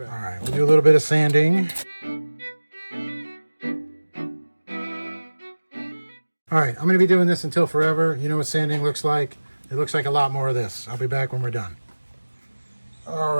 All right, we'll do a little bit of sanding. All right, I'm going to be doing this until forever. You know what sanding looks like? It looks like a lot more of this. I'll be back when we're done. All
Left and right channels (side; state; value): both; inverted; correlation -1.00